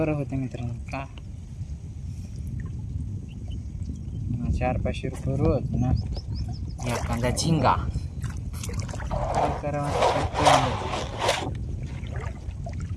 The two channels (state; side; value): identical; both; correlation 1.00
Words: होतं मित्रांनो. का 400-500 रुपये रोज ना एखादा झिंगा काय करावं.